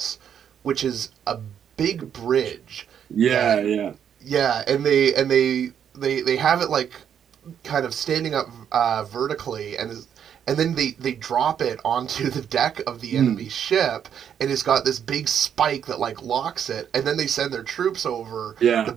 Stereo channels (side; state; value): left; quieter; 8.6 dB